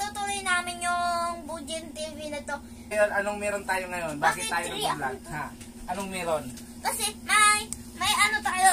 namin yung Bujin TV na to. Anong meron tayo ngayon? Bakit tayo nag-vlog? Ha? Anong meron? Kasi may ano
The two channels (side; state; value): both; identical; correlation 1.00